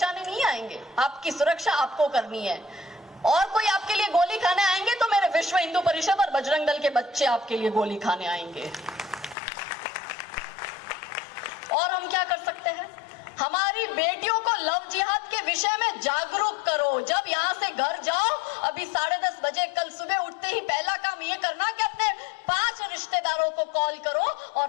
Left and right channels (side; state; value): right; drops out; at 9.3 s